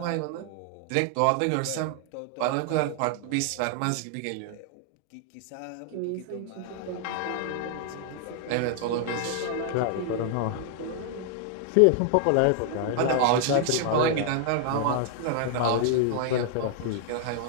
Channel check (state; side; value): different; both; correlation 0.00